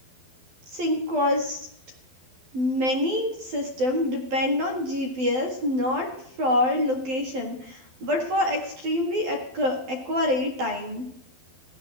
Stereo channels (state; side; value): late; left; 12 ms